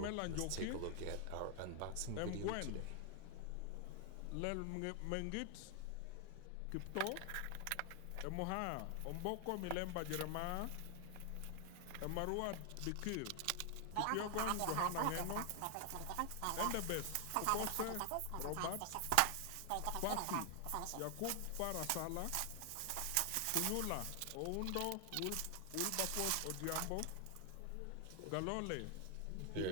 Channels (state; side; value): different; both; correlation 0.00